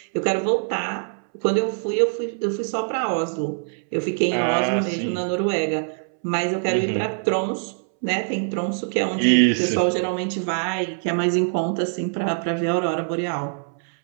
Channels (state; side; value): silent; left; 63 dB below the other